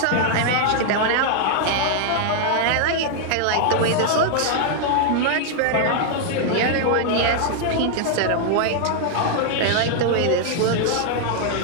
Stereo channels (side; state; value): both; different; correlation 0.00